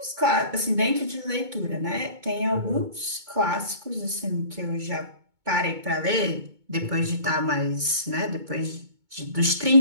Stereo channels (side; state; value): left; late; 2.2 ms